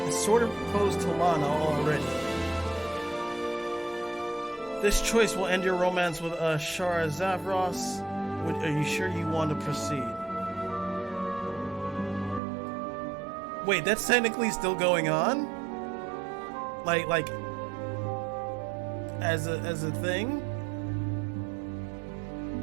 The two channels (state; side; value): drops out; left; at 12.4 s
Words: sort of proposed to Lana already. This choice will end your romance with Shara Zavros. Are you sure you want to proceed? Wait, that's technically still going on? Like as a thing?